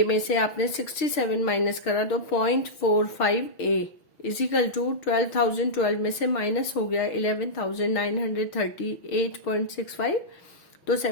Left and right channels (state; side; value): late; right; 6.0 ms